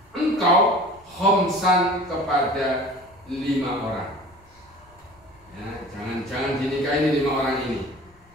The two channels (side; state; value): left; noise; rumble, 29 dB below the sound